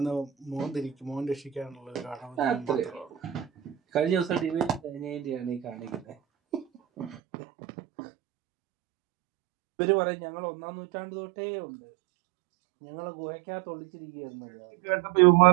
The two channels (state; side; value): drops out; left; at 7.2 s